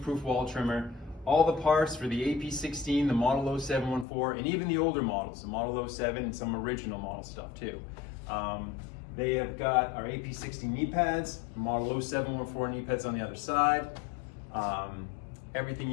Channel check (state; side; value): drops out; right; at 4.0 s